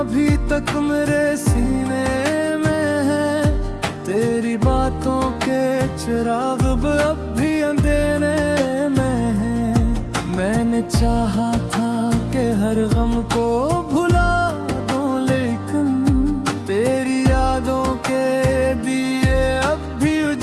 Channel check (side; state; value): both; identical; correlation 1.00